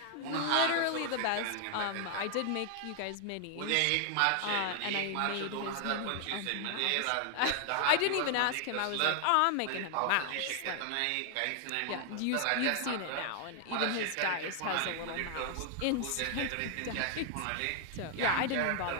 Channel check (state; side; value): different; both; correlation 0.00